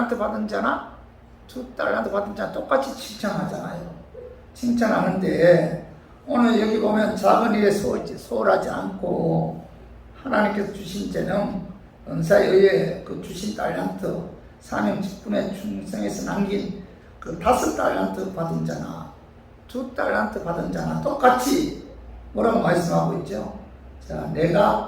받은 자나 2달란트 받은 자나 똑같이 칭찬하잖아요. 칭찬하는데 오늘 여기 보면 작은 일에 소홀하지 않고 하나님께서 주신 재능, 은사에 의해 그 주신 달란트, 사명 직분에 충성해서 남긴 그 5달란트 받은 자나 2달란트 받은 자나 똑같이 뭐라고 말씀하고 있죠? 자,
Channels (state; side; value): identical; both; correlation 1.00